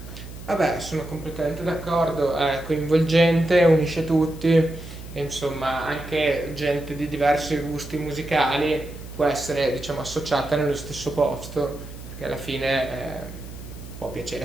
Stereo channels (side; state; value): right; noise; hum, 13 dB below the sound